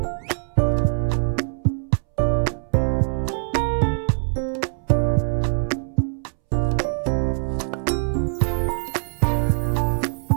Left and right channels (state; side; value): silent; left; 64 dB below the other